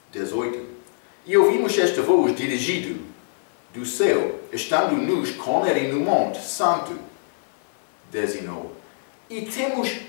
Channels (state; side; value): silent; right; digital silence